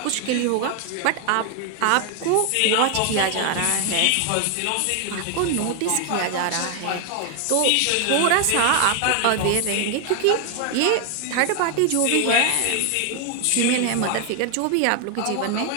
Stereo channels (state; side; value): different; both; correlation 0.00